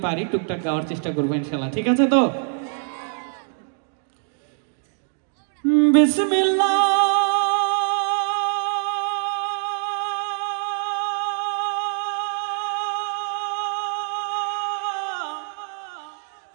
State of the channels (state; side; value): silent; left; digital silence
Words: পারি টুকটাক গাওয়ার চেষ্টা করবো ইনশাআল্লাহ, ঠিক আছে? তো বিসমিল্লাহ